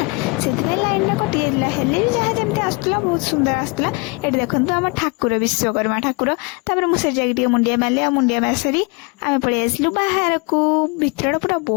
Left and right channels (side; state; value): right; quieter; 28.5 dB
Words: ସେଥିପାଇଁ ଲାଇନ ଟା କଟି ଯାଇଥିଲା। ହେଲେ ବି ଯାହା ଯେମିତି ଆସୁଥିଲା ବହୁତ ସୁନ୍ଦର ଆସୁଥିଲା। ଏଠି ଦେଖନ୍ତୁ ଆମ ଠାକୁର, ବିଶ୍ୱକର୍ମା ଠାକୁର। ତାପରେ ମୁଁ ସେ ଯାଇକି ଟିକେ ମୁଣ୍ଡିଆ ମାରିଲି। ଆଉ ମୁଣ୍ଡିଆ ମାରି ସାରି ଆମେ ପଳେଇ ଆସିଲୁ ବାହାରକୁ। ଭିତରଟା ପୁରା